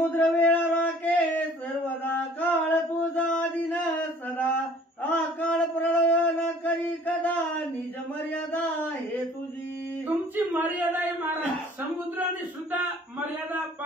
वेळा राखे सर्वदा काळ तुझा दिन सदा आकाळ प्रळय करी कदा निज मर्यादा हे तुझी. तुमची मर्यादा आहे महाराज. समुद्राने सुद्धा मर्यादा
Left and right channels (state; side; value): normal; both; correlation 0.53